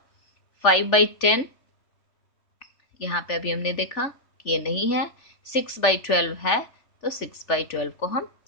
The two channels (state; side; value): late; right; 3.4 ms